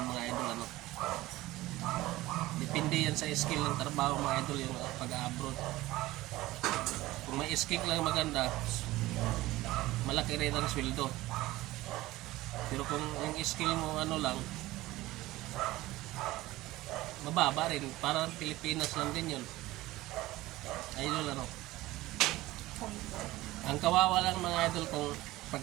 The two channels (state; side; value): quieter; left; 17.9 dB